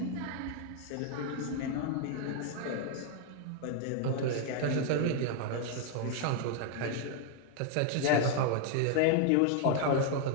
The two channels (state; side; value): different; both; correlation 0.00